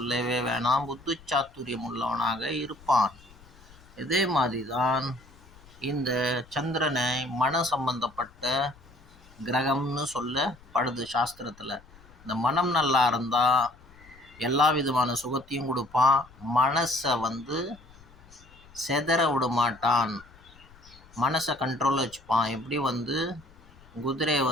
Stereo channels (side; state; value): left; noise; rumble, 24 dB below the sound